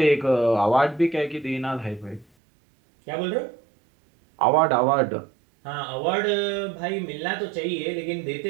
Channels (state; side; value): drops out; left; at 2.2 s